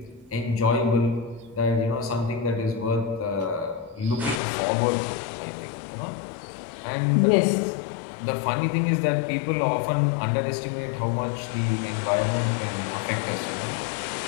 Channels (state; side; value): drops out; right; at 4.4 s